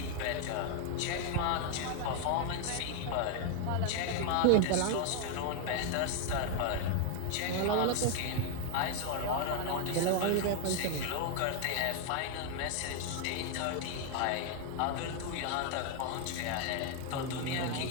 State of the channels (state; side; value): different; both; correlation 0.00